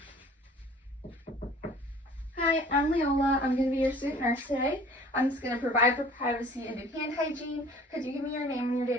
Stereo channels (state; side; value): normal; both; correlation 0.49